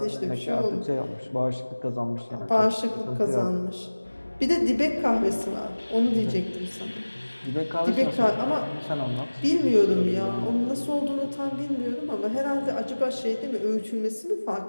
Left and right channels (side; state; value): both; inverted; correlation -1.00